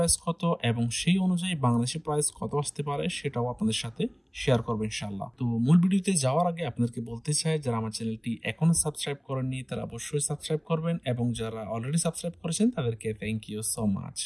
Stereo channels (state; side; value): identical; both; correlation 1.00